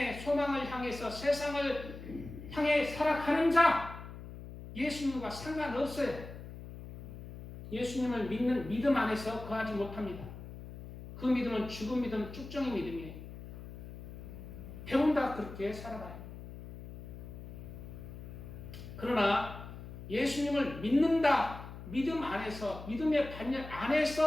소망을 향해서 세상을 향해 살아가는 자, 예수님과 상관없어요. 예수님을 믿는 믿음 안에서 거하지 못합니다. 그 믿음은 죽은 믿음, 쭉정이 믿음이에요. 배운다 그렇게 살아가요. 그러나 예수님을 믿는다, 믿음 안에서, 믿음의 반열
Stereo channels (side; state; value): left; noise; hum, 12 dB below the sound